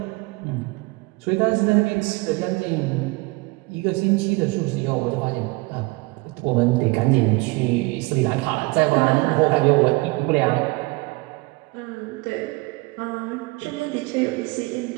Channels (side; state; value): left; quieter; 24.7 dB